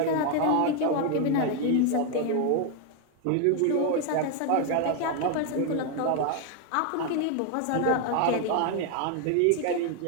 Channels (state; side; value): different; both; correlation 0.01